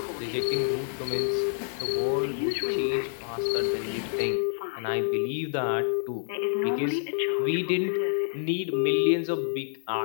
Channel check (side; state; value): right; silent; digital silence